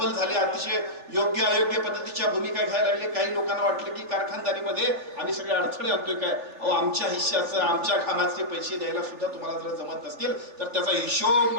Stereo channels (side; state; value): left; late; 3.3 ms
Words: झाले. अतिशय योग्य अयोग्य पद्धतीच्या भूमिका घ्यायला लागले. काही लोकांना वाटलं की कारखानदारीमध्ये आम्ही सगळे अडथळे आणतोय काय. अहो, आमच्या हिश्श्याचं, आमच्या कामाचे पैसे द्यायला सुद्धा तुम्हाला जर जमत नसतील तर त्याचा हिशोब